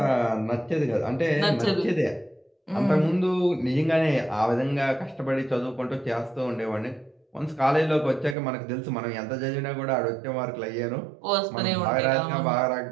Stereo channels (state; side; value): drops out; left; at 8.3 s